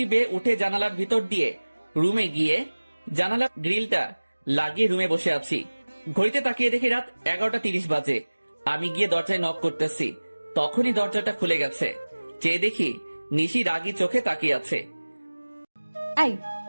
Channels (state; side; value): inverted; both; correlation -1.00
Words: বেয়ে উঠে জানালার ভিতর দিয়ে রুমে গিয়ে জানালার গ্রিলটা লাগিয়ে রুমে বসে আছি। ঘড়িতে তাকিয়ে দেখি রাত 11:30 বাজে। আমি গিয়ে দরজায় নক করতেছি, তখনই দরজাটা খুলে গেছে। চেয়ে দেখি নিশি রাগী চোখে তাকিয়ে আছে। আই,